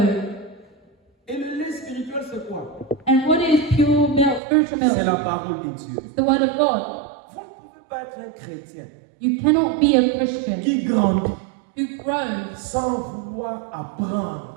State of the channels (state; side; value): drops out; left; at 4.4 s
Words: Et le lait spirituel c'est quoi? And what is pure milk, spiritual C'est la milk? parole de Dieu. It's the word of God. Vous ne pouvez pas être un chrétien You cannot be a Christian qui grandit who grows sans vouloir